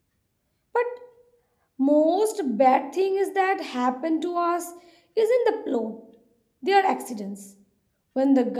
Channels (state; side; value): identical; both; correlation 1.00